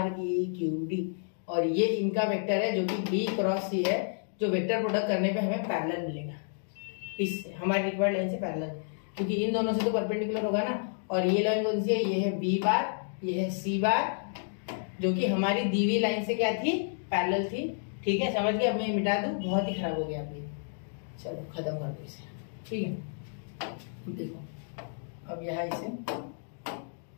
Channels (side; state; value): right; silent; digital silence